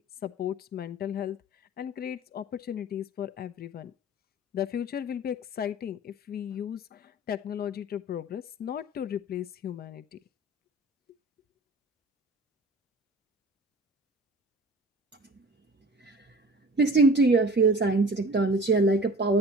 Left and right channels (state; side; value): normal; both; correlation 0.42